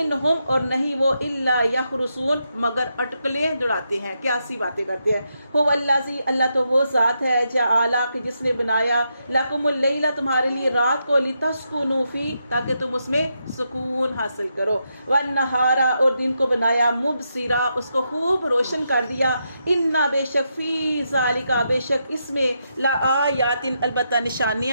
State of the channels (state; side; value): inverted; both; correlation -0.82